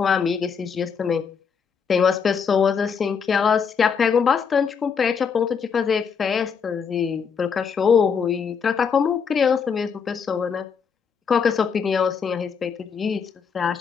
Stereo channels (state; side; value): quieter; right; 6.3 dB